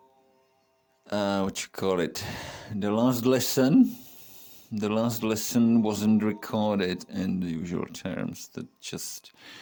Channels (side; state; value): both; identical; correlation 1.00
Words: what you call it? The last lesson wasn't recorded in the usual terms. That just